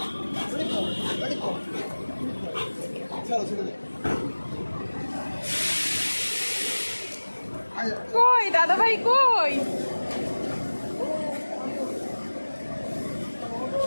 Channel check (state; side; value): inverted; both; correlation -1.00